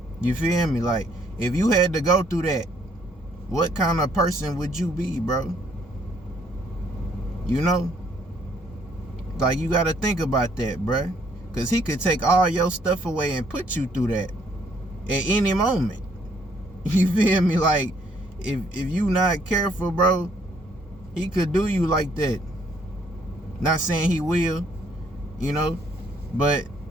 You feel me? Like, if you had to go through that, what kind of person would you be, bro? You know? Like, you gotta think about that, bro. Because he could take all your stuff away and put you through that at any moment. You feel me? Like, if you not careful, bro, he could do you like that. Not saying he will, you know, but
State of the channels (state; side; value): normal; both; correlation 0.66